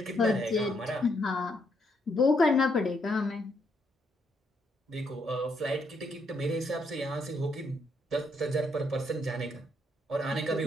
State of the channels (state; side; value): normal; both; correlation 0.74